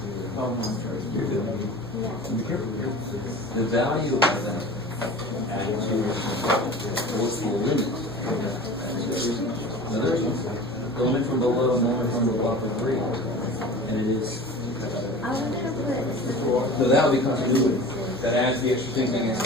The value of that what's the limit? The limit from below and the limit from above are 3. And it is. So that would be continuity. That adds the extra thing against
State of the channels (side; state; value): both; normal; correlation 0.38